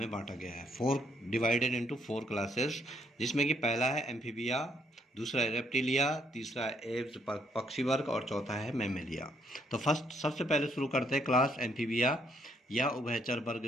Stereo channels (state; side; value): normal; both; correlation 0.71